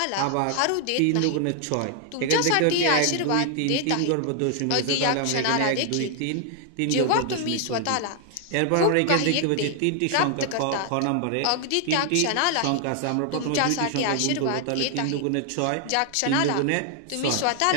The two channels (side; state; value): both; different; correlation 0.00